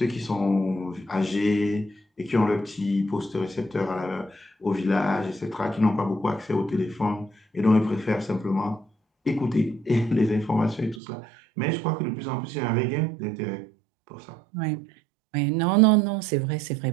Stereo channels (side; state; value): left; drops out; at 11.0 s